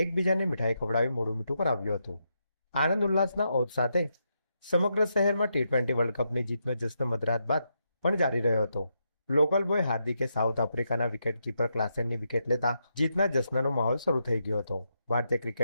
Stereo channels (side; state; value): both; inverted; correlation -0.82